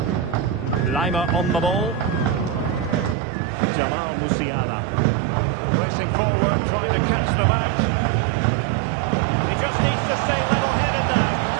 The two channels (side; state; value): left; drops out; at 3.2 s